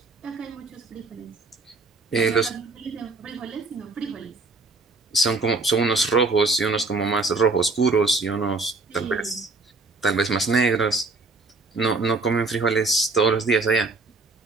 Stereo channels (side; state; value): left; quieter; 3.6 dB